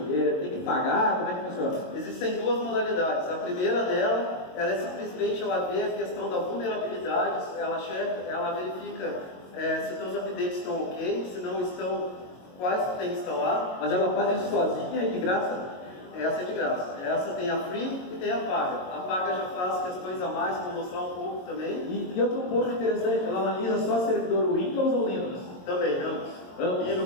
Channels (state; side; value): late; right; 22 ms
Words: tem que pagar? Como é que funciona? Existem duas modalidades. A primeira dela, ela é simplesmente, ela vê a questão da vulnerabilidade, ela verifica se os teus updates estão ok, se não estão, quais tu tem que instalar. Mas ela faz isso sozinha e de graça? Essa é de graça. Essa tem a free e tem a paga. A paga já faz questões a mais, vou mostrar um pouco também. E outro ponto interessante, ela analisa só servidor Windows ou Linux? Também, ambos.